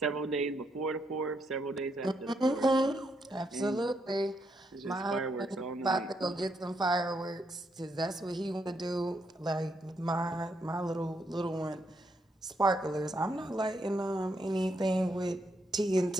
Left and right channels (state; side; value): normal; both; correlation 0.78